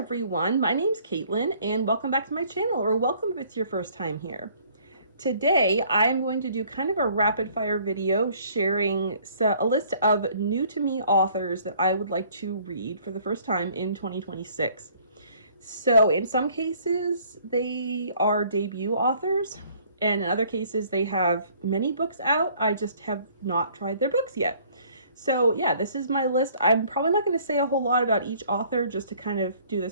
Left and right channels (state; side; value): inverted; both; correlation -0.58